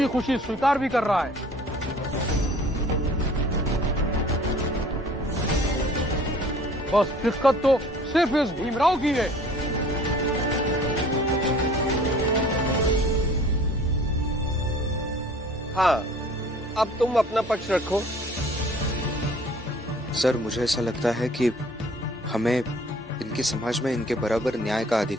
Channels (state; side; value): normal; both; correlation 0.50